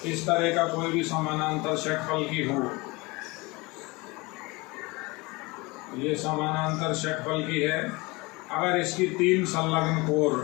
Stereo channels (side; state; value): right; quieter; 24.5 dB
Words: इस तरह का कोई भी समानांतर षटफलकी हो, ये समानांतर षटफलकी है, अगर इसकी तीन संलग्न